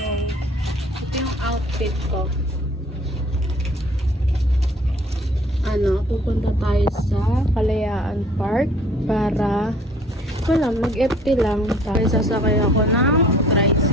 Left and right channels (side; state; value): both; normal; correlation 0.54